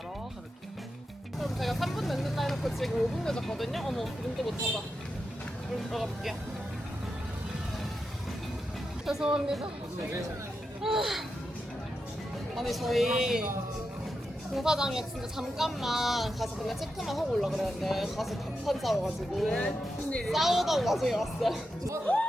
가볼게요. 그럼 제가 3분 늦는다 해놓고 지금 5분 늦었거든요? 어머, 눈도 못 찾아. 그럼 들어가 볼게요. 죄송합니다. 아니, 저희 공사장에 진짜 잠깐만 가서 그냥 체크만 하고 올라 그랬는데 가서 답판 싸워가지고 싸우다가 나중에 왔어요.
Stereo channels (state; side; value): normal; both; correlation 0.88